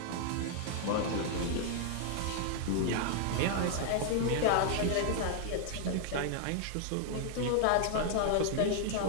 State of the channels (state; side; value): different; both; correlation 0.00